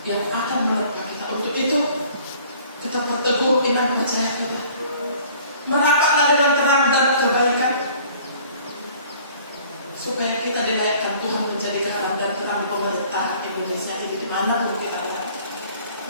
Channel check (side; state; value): both; inverted; correlation -0.53